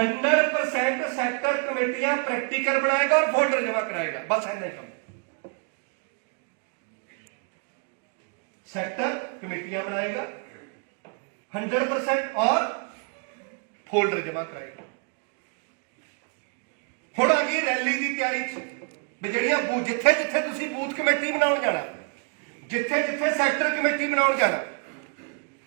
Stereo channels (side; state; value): left; quieter; 37.5 dB